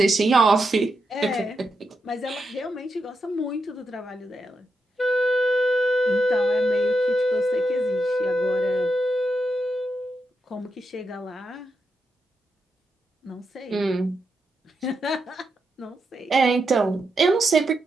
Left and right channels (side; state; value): both; normal; correlation 0.85